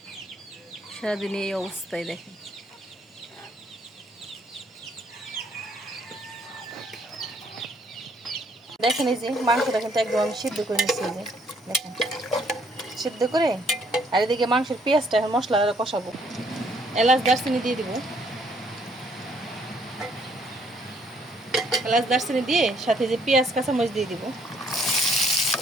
সারাদিন এই অবস্থায় দেখেন। দেখেন এই যে মাংসটা কিন্তু একদম আমি সিদ্ধ করে নিচ্ছি। এই যে দেখেন সিদ্ধ করে, আর এদিকে মাংসের পেঁয়াজটা এখন মশলা কষাবো। এলাচ দারচিনি দিয়ে দিব, এলাচ দারচিনি দিয়ে সাথে যে পেঁয়াজ কাঁচামরিচ দিয়ে দিব।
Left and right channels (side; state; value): both; normal; correlation 0.66